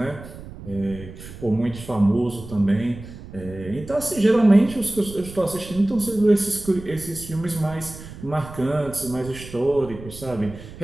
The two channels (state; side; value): noise; right; rumble, 14 dB below the sound